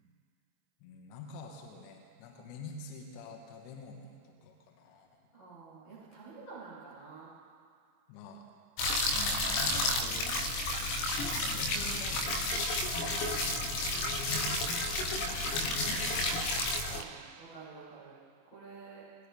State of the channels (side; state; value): right; late; 24 ms